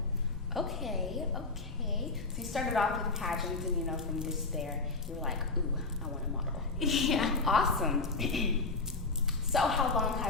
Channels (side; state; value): right; quieter; 3.9 dB